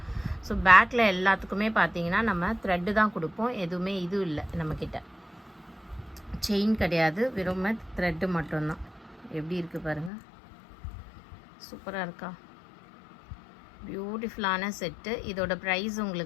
ஸோ பேக்கில் எல்லாத்துக்குமே பார்த்தீங்கன்னா நம்ம த்ரெட்டு தான் கொடுப்போம், எதுவுமே இது இல்லை நம்மக்கிட்ட. செயின் கிடையாது, வெறும் த்ரெட்டு மட்டும்தான். எப்படி இருக்குது பாருங்கள், சூப்பராக இருக்கா? பியூட்டிஃபுல்லான செட்டு. இதோட ப்ரைஸ்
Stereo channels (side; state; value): right; drops out; at 10.1 s